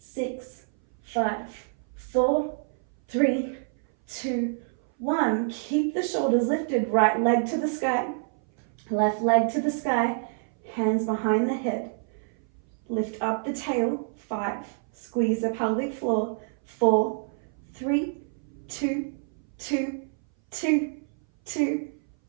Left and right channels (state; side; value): silent; left; 58 dB below the other